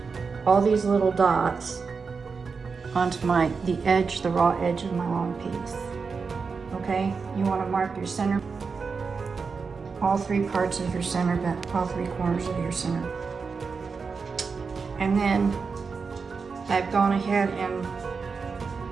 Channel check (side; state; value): left; quieter; 5.1 dB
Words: all these little dots onto the edge, the raw edge of my long piece. Okay, you want to mark your center, all three parts of your center, but all three corners of your center. And then I've gone ahead and